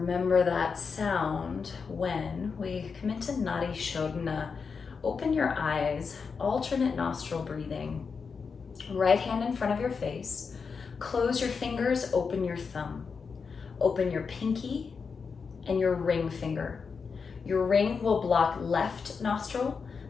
that sound when we come into Nadi Shodhana. Open your eyes, alternate nostril breathing. Right hand in front of your face. Close your fingers, open your thumb. Open your pinky and your ring finger. Your ring will block left nostril,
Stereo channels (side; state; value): right; quieter; 5.4 dB